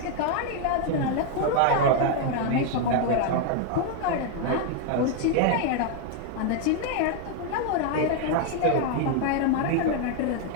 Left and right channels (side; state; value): both; different; correlation 0.00